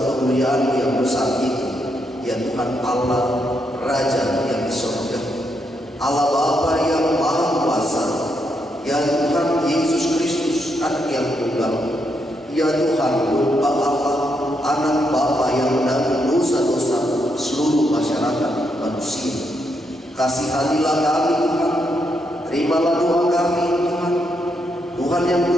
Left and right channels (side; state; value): both; normal; correlation 0.79